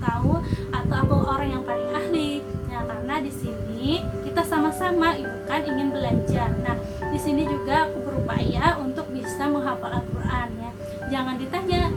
atau aku orang yang paling ahli. Nah, karena di sini kita sama-sama itu kan ingin belajar. Nah, di sini juga aku berupaya untuk bisa menghafal Al-Quran ya. Jangan ditanya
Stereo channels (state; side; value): identical; both; correlation 1.00